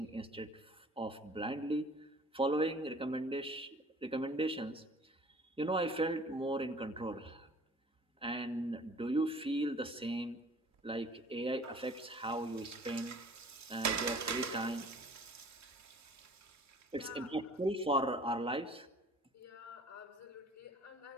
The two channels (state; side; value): normal; both; correlation 0.50